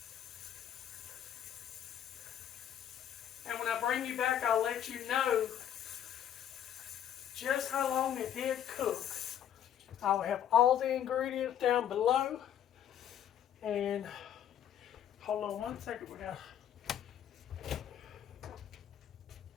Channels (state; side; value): quieter; right; 10.1 dB